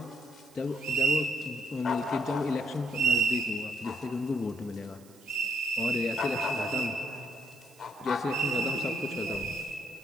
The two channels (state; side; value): noise; right; hiss, 26 dB below the sound